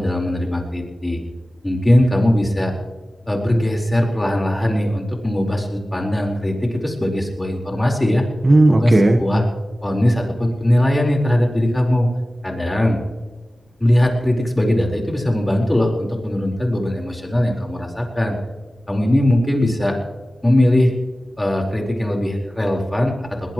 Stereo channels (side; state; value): both; normal; correlation 0.96